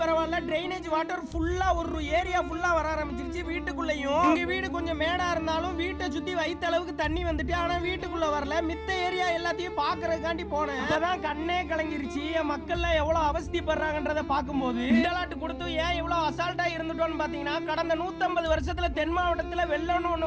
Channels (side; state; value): both; identical; correlation 1.00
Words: பரவாயில்ல, டிரைனேஜ் வாட்டர் ஃபுல்லா ஒரு ஏரியா ஃபுல்லா வர ஆரம்பிச்சிருச்சு. வீட்டுக்குள்ளயும் எங்க வீடு கொஞ்சம் மேடா இருந்தாலும் வீட்டை சுத்தி வைத்த அளவுக்கு தண்ணி வந்துட்டு, ஆனா வீட்டுக்குள்ள வரல. மித்த ஏரியா எல்லாத்தையும் பாக்குறதுக்காண்டி போனேன். அதான் கண்ணே கலங்கிருச்சு. மக்கள்ல எவ்வளவு அவஸ்திப்படுறாங்கன்றத பார்க்கும்போது கொடுத்து ஏன் இவ்வளவு அசால்ட்டா இருந்துட்டோம்னு பாத்தீங்கன்னா, கடந்த 150 வருஷத்துல தென் மாவட்டத்துல வெள்ளம்னு ஒண்ணு